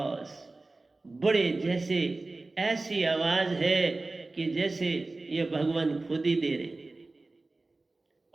बड़े जैसे ऐसी आवाज है कि जैसे ये भगवान खुद ही दे रहे।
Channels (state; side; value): quieter; left; 3.2 dB